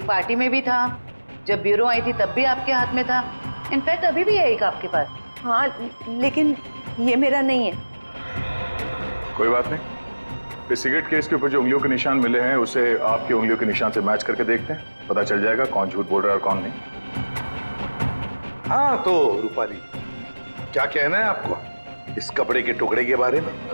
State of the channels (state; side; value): inverted; both; correlation -1.00